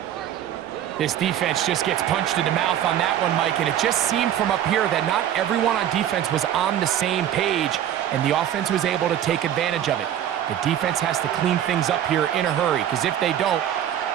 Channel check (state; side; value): quieter; left; 10.9 dB